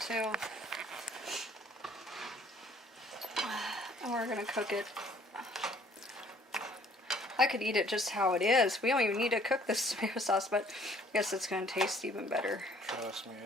too. And we're going to cook it. I could eat it just how it is. We don't even need to cook this tomato sauce, but I guess it's going to taste even better. Trust me,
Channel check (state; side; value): normal; both; correlation 0.58